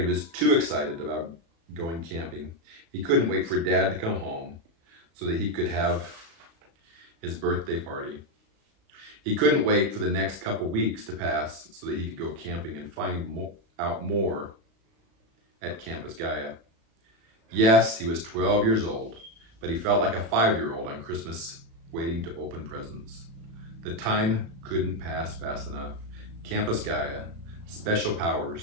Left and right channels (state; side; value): late; left; 36 ms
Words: was too excited about going camping. He couldn't wait for Dad to come home so that he could have his birthday party. He couldn't wait for the next couple weeks to pass so that he could go camping and find out more at Campus Gaia. Yes, he was 12 years old, but he felt like a 5-year-old on Christmas waiting to open presents. The time couldn't pass fast enough. Campus Gaia, special